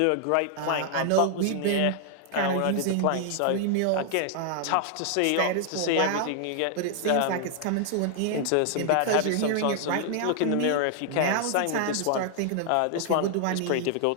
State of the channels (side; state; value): both; different; correlation 0.00